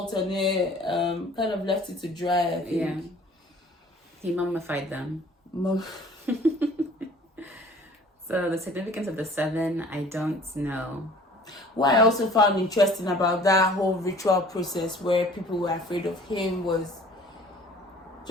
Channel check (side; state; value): both; normal; correlation 0.50